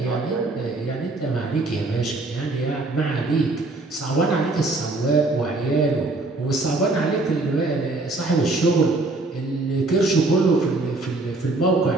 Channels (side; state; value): left; quieter; 3.1 dB